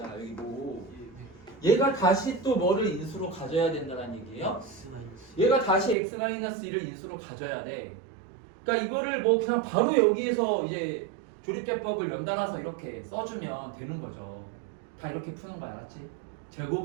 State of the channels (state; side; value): drops out; left; at 6.0 s